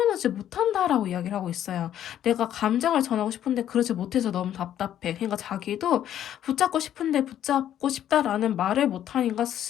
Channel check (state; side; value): quieter; right; 10.9 dB